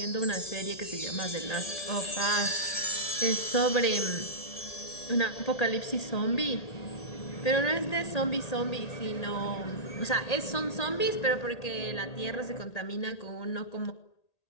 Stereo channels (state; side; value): late; right; 1.8 ms